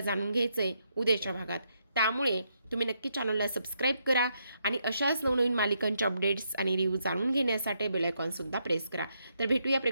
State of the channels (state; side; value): inverted; both; correlation -0.78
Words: जाणून घ्यायचं आहे उद्याच्या भागात. त्यामुळे तुम्ही नक्की चॅनलला सबस्क्राईब करा आणि अशाच नवनवीन मालिकांच्या अपडेट्स आणि रिव्ह्यू जाणून घेण्यासाठी बेल आयकॉनसुद्धा प्रेस करा. तर भेटूया